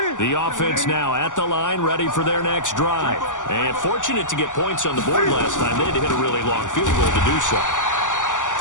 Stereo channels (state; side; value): late; right; 0.87 ms